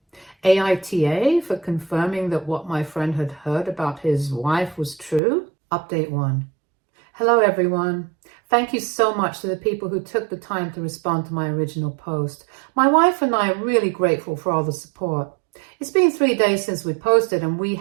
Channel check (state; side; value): drops out; left; at 5.2 s